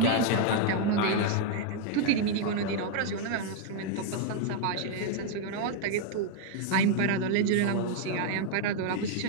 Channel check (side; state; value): both; different; correlation 0.00